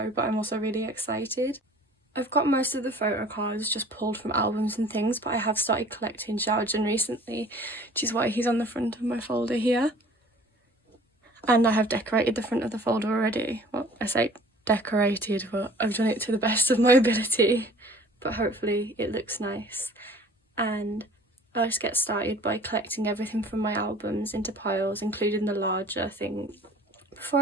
but I'm also really excited. I've got most of the photo cards just pulled from albums and things, but I have started collecting xiaojun recently, which is why he's on the front of my folder here. And I have decorated the front of the folder already. Well, I say decorated, but I've done it to the best of my ability. But hopefully it looks nice. And I'll just get started by collecting everything from my albums into piles, including the larger thing. Before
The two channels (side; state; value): both; normal; correlation 0.49